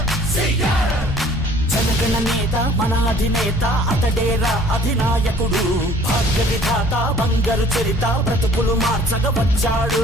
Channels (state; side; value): normal; both; correlation 0.53